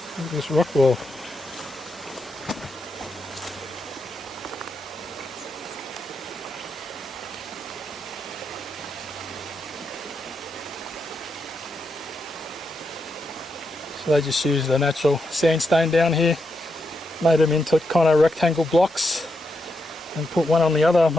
Look at this rock wall. So they just used the natural sandstone down here, made them into kind of rectangle blocks and put one on the other.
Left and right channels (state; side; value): normal; both; correlation 0.83